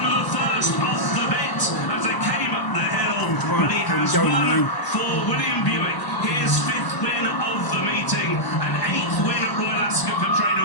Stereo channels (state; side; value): late; right; 1.0 ms